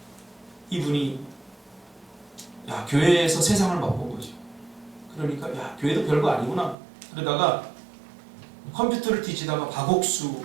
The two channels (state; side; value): drops out; left; at 6.8 s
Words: 이분이 교회에서 세상을 맛본 거죠. 그러니까 교회도 별거 아니구나. 그러다가 컴퓨터를 뒤지다가 박옥수